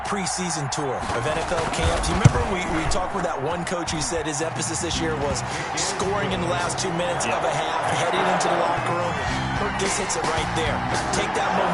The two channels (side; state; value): both; identical; correlation 1.00